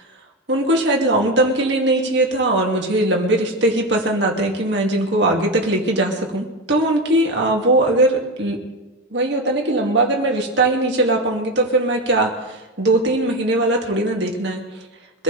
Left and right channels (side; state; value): both; normal; correlation 0.17